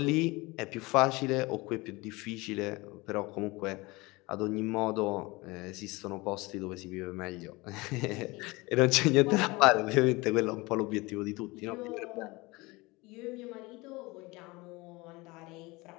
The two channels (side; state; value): right; quieter; 23.2 dB